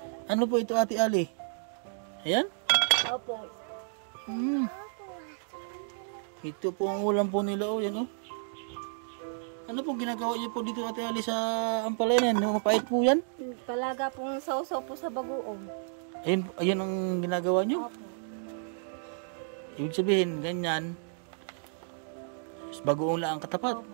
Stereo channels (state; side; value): silent; left; digital silence